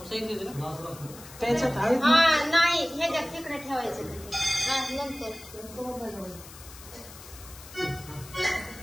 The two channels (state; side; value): noise; left; hiss, 17 dB below the sound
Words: त्याच्यात आहे नाही, हे तिकडे ठेवायचं नंतर.